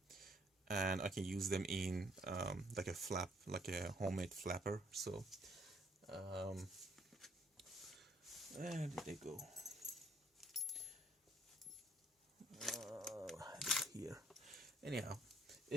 I can use them in like a flap, like a homemade flapper. So where did they go? Here. Anyhow,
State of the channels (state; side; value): normal; both; correlation 0.65